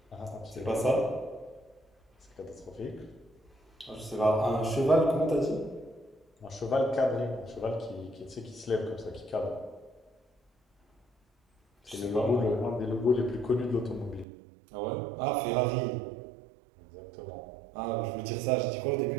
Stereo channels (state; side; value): drops out; left; at 14.2 s